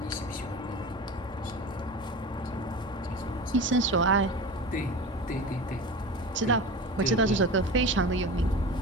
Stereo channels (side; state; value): both; normal; correlation 0.31